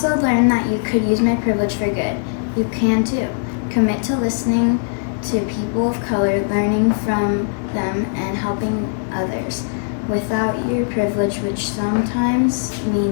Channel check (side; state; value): right; silent; digital silence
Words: learned that you could use my privilege for good. You can too. Commit to listening to people of color, learning from them, and helping others without your privilege, which sometimes